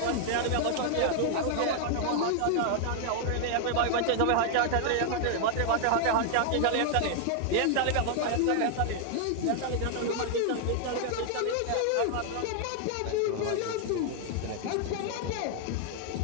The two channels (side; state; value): both; different; correlation 0.00